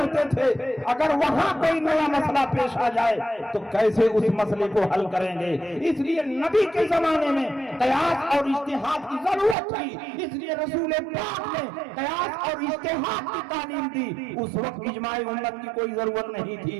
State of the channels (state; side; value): drops out; left; at 9.6 s